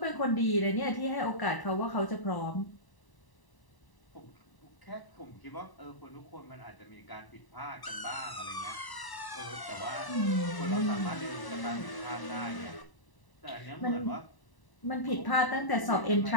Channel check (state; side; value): late; right; 1.0 ms